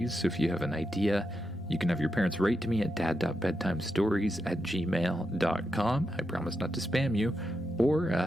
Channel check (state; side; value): normal; both; correlation 0.85